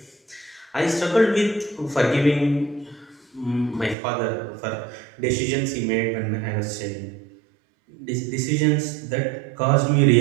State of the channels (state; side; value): drops out; left; at 4.0 s